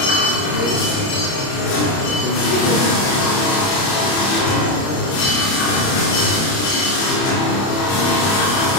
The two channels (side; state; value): right; late; 30 ms